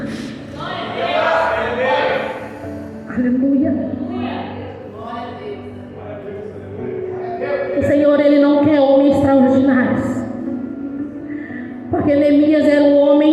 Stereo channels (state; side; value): identical; both; correlation 1.00